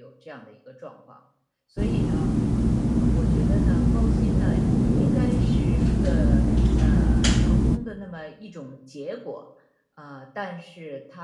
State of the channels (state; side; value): identical; both; correlation 1.00